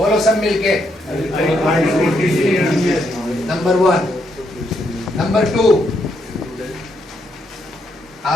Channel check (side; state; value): both; normal; correlation 0.77